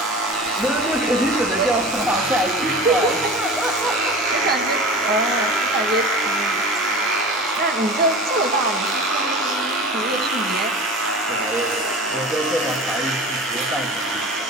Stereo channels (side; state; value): both; normal; correlation 0.34